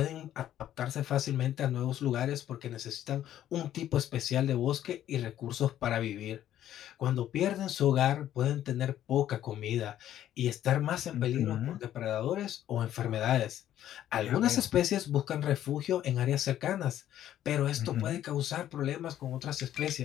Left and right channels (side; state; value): right; quieter; 11.8 dB